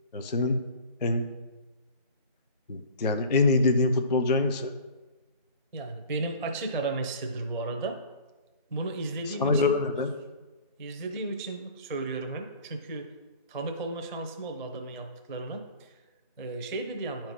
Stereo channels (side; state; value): both; inverted; correlation -0.42